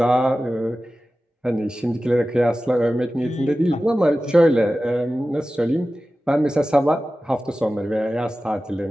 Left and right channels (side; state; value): both; normal; correlation 0.95